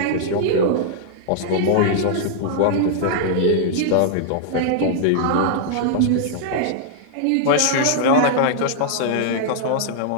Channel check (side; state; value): both; different; correlation -0.01